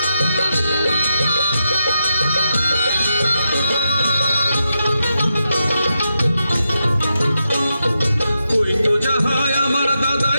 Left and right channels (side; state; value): both; inverted; correlation -0.86